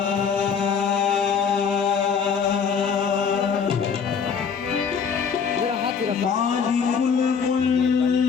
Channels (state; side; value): quieter; right; 6.5 dB